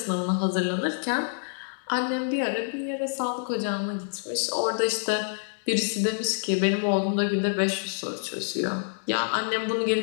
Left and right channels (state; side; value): silent; right; digital silence